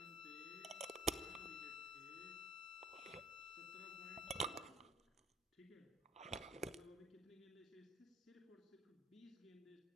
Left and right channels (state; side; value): normal; both; correlation 0.56